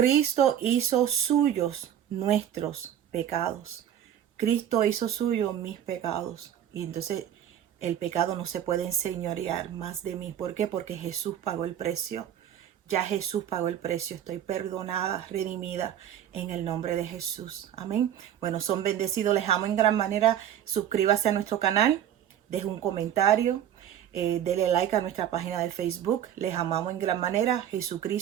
hizo suyos nuestros pecados. Cristo hizo suyo mis pecados. Y entonces el pecado no se puede enseñorear más de mí. ¿Por qué? Porque Jesús pagó el precio. Ya Jesús pagó el precio. Estoy perdonada, redimida en el nombre de Jesús. Amén. Bueno, son bendecidos. Les amo en gran manera. Suscríbase a nuestro canal. Deje un comentario. Dele like a nuestra página de Facebook. Les amamos en gran manera.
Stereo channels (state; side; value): quieter; left; 10.4 dB